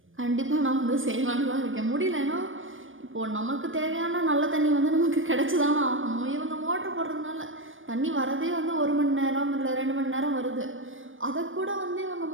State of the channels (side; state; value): left; late; 0.58 ms